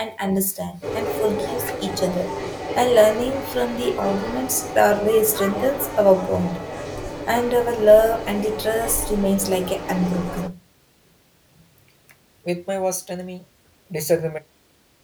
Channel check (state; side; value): identical; both; correlation 1.00